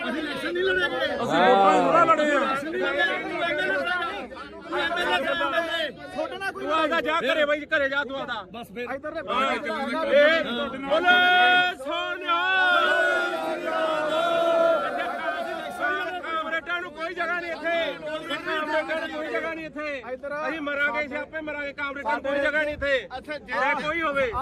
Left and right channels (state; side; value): identical; both; correlation 1.00